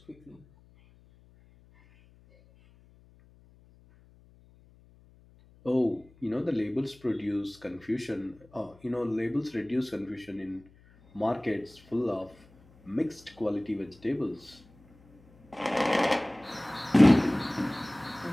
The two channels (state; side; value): noise; left; hum, 27 dB below the sound